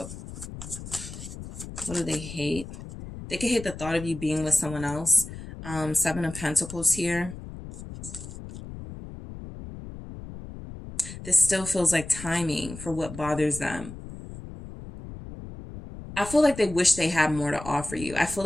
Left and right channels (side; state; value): left; noise; rumble, 12 dB below the sound